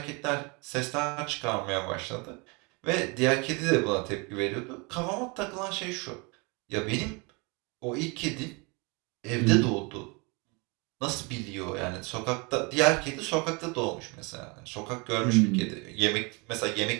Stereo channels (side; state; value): left; quieter; 29.5 dB